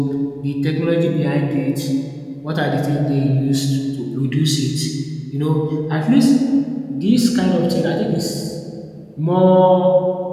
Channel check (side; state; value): both; identical; correlation 1.00